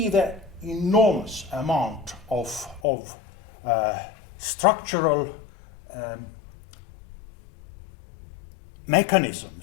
the enormous amount of structural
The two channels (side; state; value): right; drops out; at 2.8 s